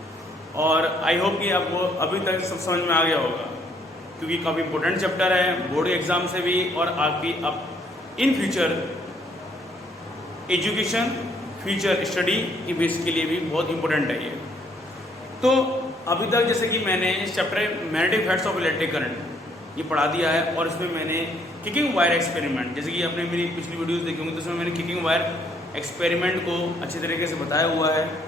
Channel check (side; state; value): both; normal; correlation 0.67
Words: और आई होप कि आपको अभी तक सब समझ में आ गया होगा, क्योंकि काफ़ी इंपॉर्टेंट चैप्टर है बोर्ड एग्जाम से भी और आपकी अब in future education future study की बेस के लिए भी बहुत इंपॉर्टेंट है ये। तो अभी तक जैसे कि मैंने इस chapter magnetic effects of electric current ये पढ़ा दिया है और इसमें मैंने किकिंग वायर एक्सपेरिमेंट, जैसे कि आपने मेरी पिछली वीडियोस देखी होंगी तो उसमें मैंने किकिंग वायर एक्सपेरिमेंट को अच्छे तरीके से बताया हुआ है